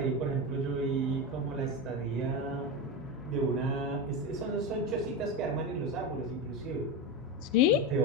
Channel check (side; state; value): both; normal; correlation 0.18